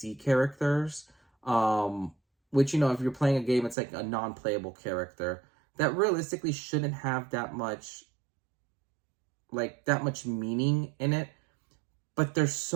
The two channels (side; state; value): left; drops out; at 3.8 s